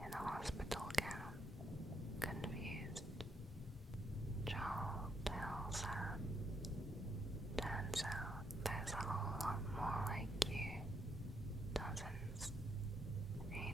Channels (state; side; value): normal; both; correlation 0.77